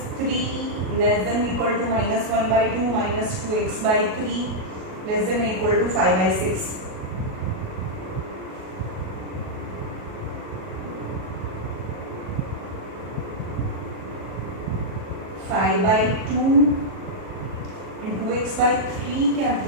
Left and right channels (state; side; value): late; left; 37 ms